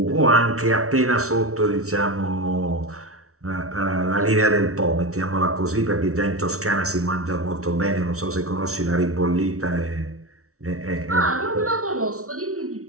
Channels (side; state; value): left; late; 0.64 ms